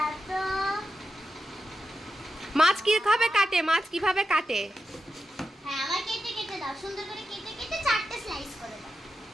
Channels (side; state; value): both; normal; correlation 0.89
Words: তো। মাছ কি খাবে কাটে? মাছ কিভাবে কাটে? হ্যাঁ আমার কেটে কেটে দাও। সুন্দর করে কেটে কেটে 4টে স্লাইস করে দাও।